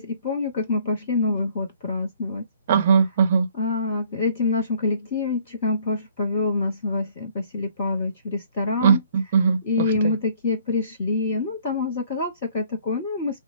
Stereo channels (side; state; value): both; inverted; correlation -0.59